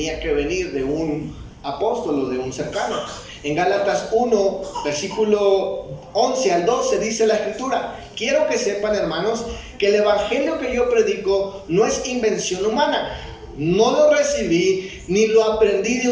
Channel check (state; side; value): identical; both; correlation 1.00